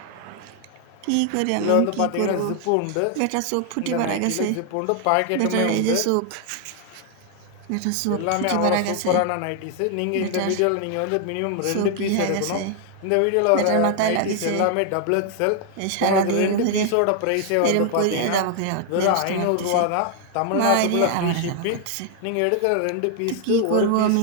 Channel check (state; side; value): different; both; correlation 0.00